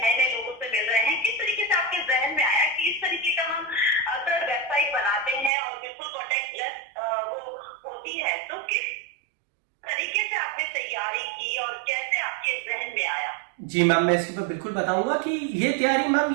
नए नए लोगों से मिल रहे हैं। किस तरीके से आपके जहन में आया कि इस तरीके का हम अगर वेबसाइट बनाते हैं और बिल्कुल कॉन्टैक्ट लेस वो होती है, तो किस कैसे आपने तैयारी की और कैसे आपके जहन में आया? जी मैम, मैं इसके ऊपर बिल्कुल बताऊंगा कि ये तैयारी मैम,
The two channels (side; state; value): left; drops out; at 5.5 s